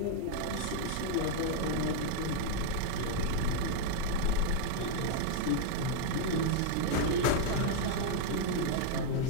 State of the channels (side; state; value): both; different; correlation 0.00